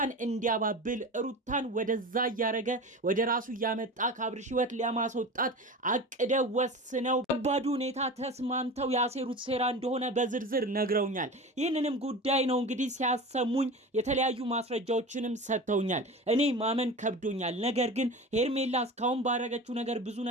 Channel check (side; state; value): both; normal; correlation 0.32